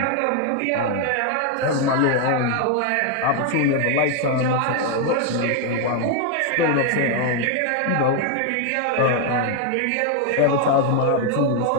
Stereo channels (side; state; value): both; different; correlation 0.01